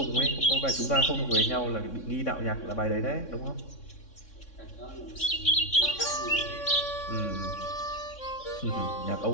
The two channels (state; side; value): late; right; 3.6 ms